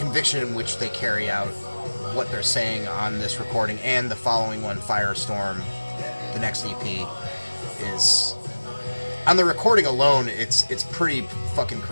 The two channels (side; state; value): both; inverted; correlation -1.00